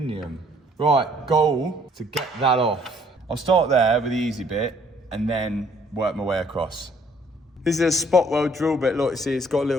Right, goal to get that off. I'll start there with the easy bit and then work my way across. This is a spot weld drill bit. Look, see, it's got a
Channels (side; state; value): both; normal; correlation 0.62